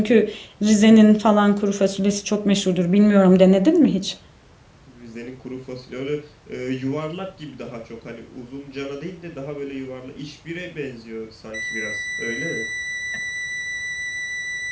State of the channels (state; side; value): identical; both; correlation 1.00